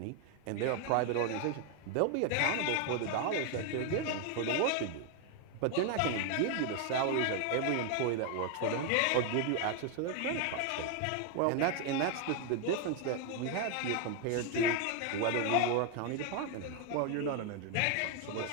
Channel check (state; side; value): different; both; correlation 0.01